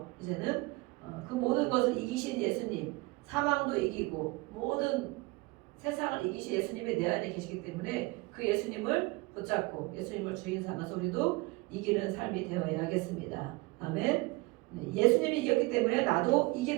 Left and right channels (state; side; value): quieter; left; 23.7 dB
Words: 이제는 그 모든 것을 이기신 예수님, 사망도 이기고 모든 세상을 이기신 예수님이 내 안에 계시기 때문에 그 예수님을 붙잡고 예수님을 주인 삼아서 우리도 이기는 삶이 되어야겠습니다. 아멘. 네, 예수님이 이겼기 때문에 나도